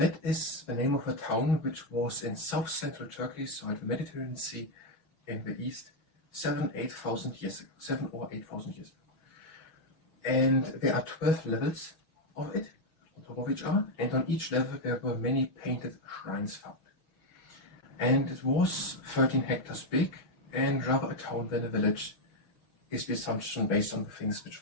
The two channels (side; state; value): right; late; 6.1 ms